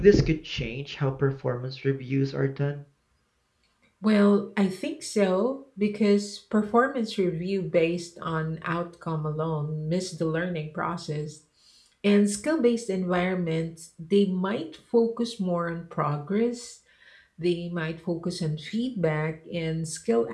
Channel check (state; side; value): identical; both; correlation 1.00